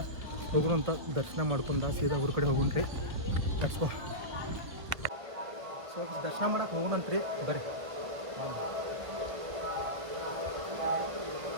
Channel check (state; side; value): late; left; 1.5 ms